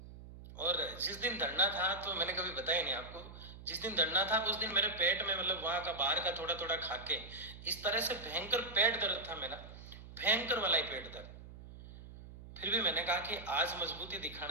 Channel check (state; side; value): noise; right; hum, 15 dB below the sound